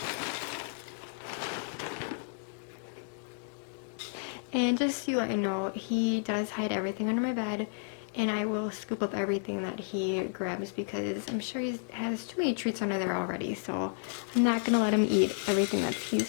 And just to let you know, he does hide everything under my bed, and I will scoop up everything that he grabs because I'm sure he has too many treats under there already, so I'm not going to let him eat everything that he's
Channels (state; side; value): silent; right; digital silence